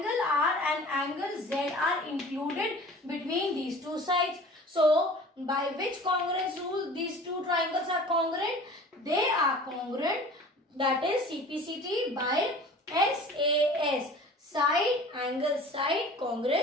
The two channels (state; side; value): normal; both; correlation 0.43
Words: R and angle Z are included between these two sides. So by which congruence rule these two triangles are congruent? They are congruent, that is CPCT by SAS, side, angle, side